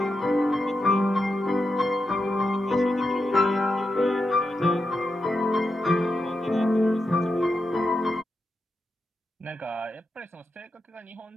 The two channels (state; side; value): normal; both; correlation 0.87